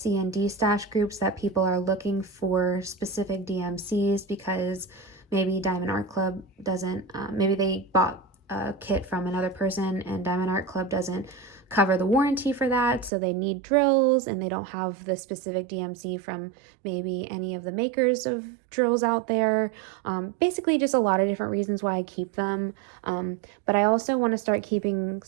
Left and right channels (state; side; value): drops out; left; at 13.1 s